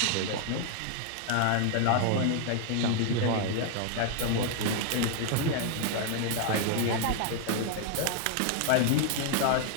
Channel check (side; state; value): both; different; correlation 0.00